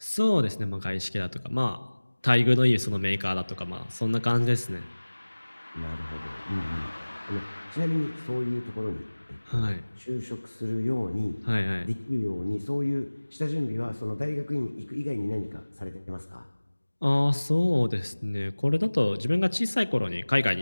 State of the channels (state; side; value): inverted; both; correlation -1.00